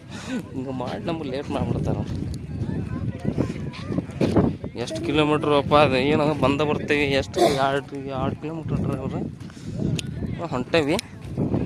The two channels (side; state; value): both; identical; correlation 1.00